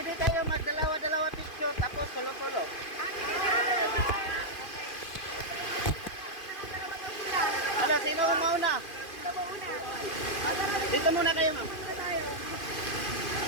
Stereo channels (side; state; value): right; late; 2.5 ms